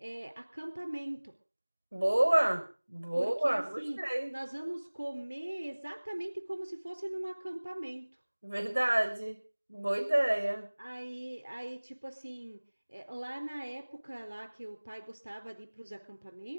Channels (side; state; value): both; inverted; correlation -1.00